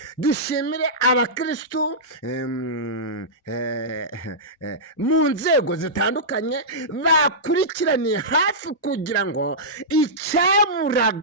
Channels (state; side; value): normal; both; correlation -0.14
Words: dushimire abakirisitu mu nzego zitandukanye bakurikiraniye hafi kugira ngo